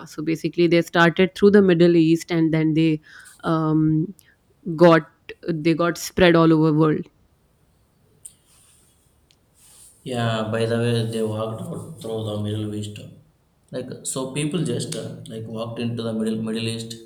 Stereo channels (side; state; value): both; identical; correlation 1.00